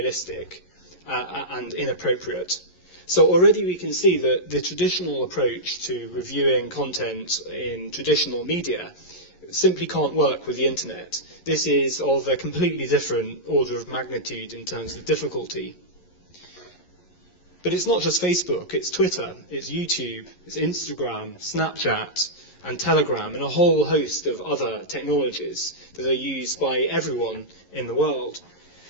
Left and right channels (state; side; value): late; right; 11 ms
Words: and inappropriate. So already we can see that the traditional approach to reviewing content in traditional media simply can't work with the internet. This is of a completely different order of magnitude in terms of difficulty. But it's not just Facebook, it's Twitter, it's YouTube, it's Instagram, Snapchat, and Telegram, and a whole host of other technologies that are used by everyone in the world.